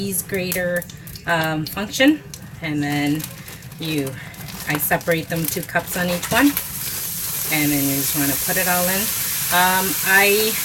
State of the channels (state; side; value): identical; both; correlation 1.00